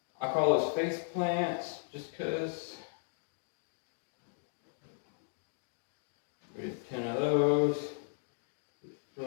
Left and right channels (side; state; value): right; silent; digital silence